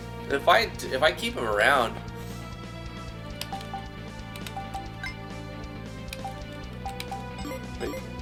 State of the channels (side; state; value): both; identical; correlation 1.00